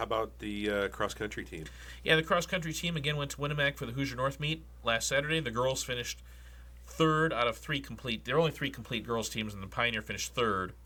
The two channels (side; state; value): both; identical; correlation 1.00